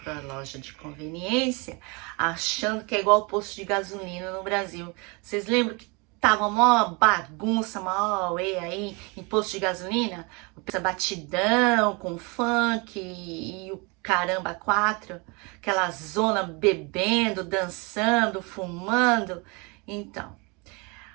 para a loja de conveniência, achando que é igual o posto de gasolina no Brasil. Vocês lembram que tava uma bagunça, uma auê aí em posto de gasolina? Essa batidão com funk e o caramba 4, aquela zona bebendo, dançando, fumando. Então,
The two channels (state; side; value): quieter; left; 29.3 dB